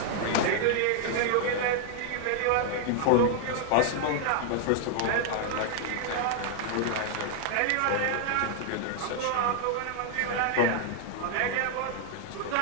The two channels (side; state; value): both; different; correlation 0.00